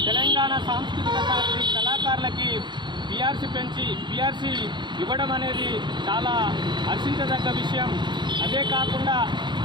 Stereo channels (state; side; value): late; left; 0.22 ms